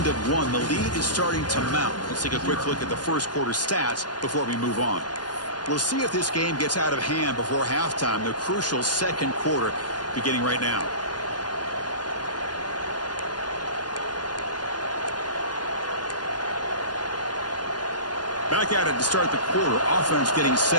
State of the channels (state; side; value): late; right; 0.70 ms